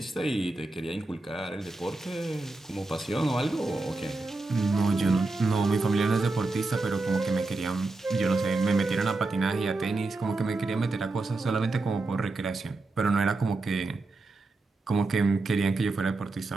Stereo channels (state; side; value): quieter; left; 3.3 dB